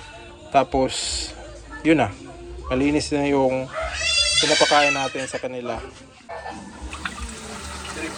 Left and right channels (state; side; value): identical; both; correlation 1.00